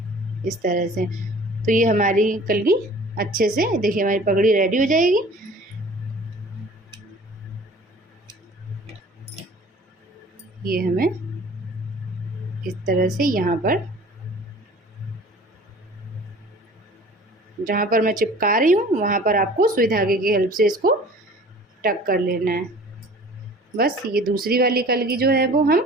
इस तरह से। तो ये हमारी कलगी अच्छे से, देखिए हमारी पगड़ी रेडी हो जाएगी। ये हमें इस तरह से यहाँ पर जहाँ पर मैं चिपका रही हूँ वहाँ पर आपको सुई धागे की हेल्प से इसको टक कर लेना है। बस ये दूसरी वाली कलगी जो है वो हम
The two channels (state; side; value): normal; both; correlation 0.47